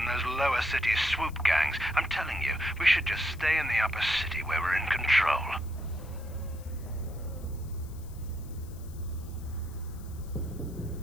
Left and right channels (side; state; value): left; noise; hiss, 23 dB below the sound